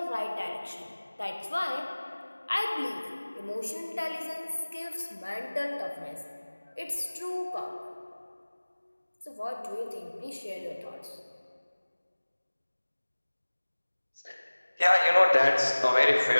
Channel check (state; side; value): inverted; both; correlation -1.00